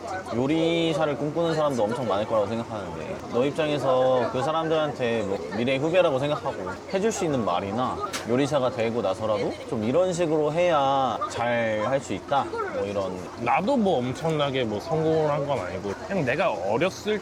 요리사를 꿈꾸는 사람도 엄청 많을 거라고 생각하는데 너 입장에서 그 사람들한테 뭐 미래 후배라고 생각하고 해줄 수 있는 말이나 요리사가 되고 나서라도 좀 이런 식으로 해야 잘 할 수 있다 뭐 이런. 나도 뭐 엄청나게 뭐 성공을 한 건 아니고 그냥 내가 어렸을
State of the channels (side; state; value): both; identical; correlation 1.00